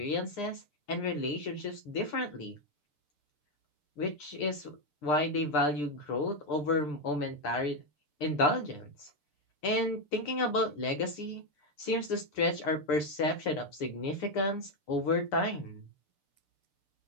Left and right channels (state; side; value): late; right; 6.7 ms